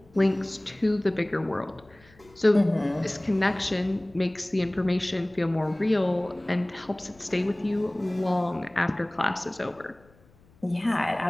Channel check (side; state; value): left; noise; rumble, 28 dB below the sound